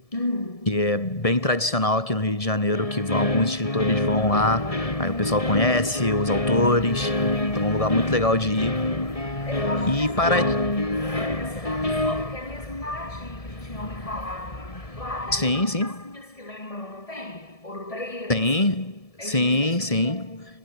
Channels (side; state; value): right; late; 1.7 ms